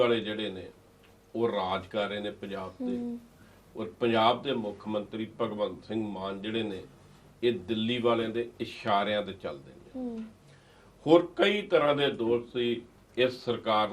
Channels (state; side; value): identical; both; correlation 1.00